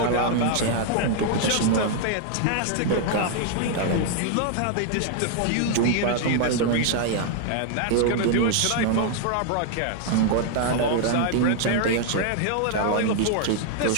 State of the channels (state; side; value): different; both; correlation 0.00